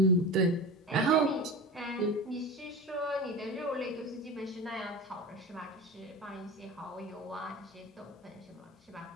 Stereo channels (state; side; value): normal; both; correlation 0.29